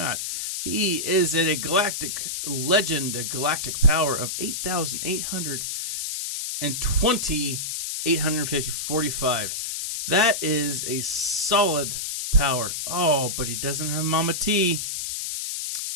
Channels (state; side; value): noise; left; hiss, 4 dB below the sound